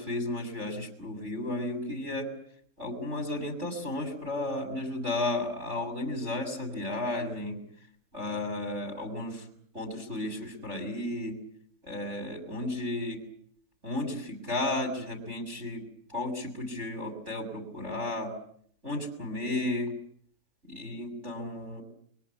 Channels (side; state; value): left; late; 3.5 ms